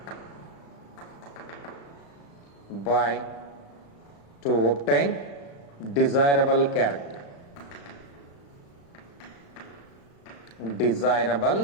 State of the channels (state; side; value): late; right; 35 ms